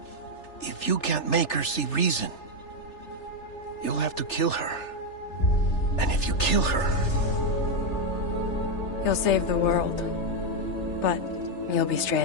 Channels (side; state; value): right; late; 3.3 ms